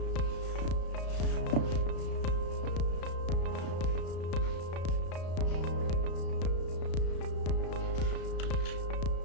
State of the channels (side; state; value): right; late; 34 ms